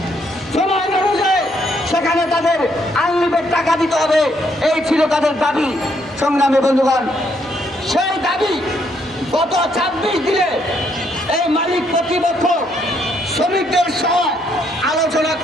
সময় অনুযায়ী সেখানে তাদের আনলিমিটেড টাকা দিতে হবে। এই ছিল তাদের দাবি। সংগ্রামী বন্ধুগণ, সেই দাবি গত 26 দিনে এই মালিক কর্তৃপক্ষ শ্রমিকদের সহ আলোচনা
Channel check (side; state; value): both; normal; correlation 0.72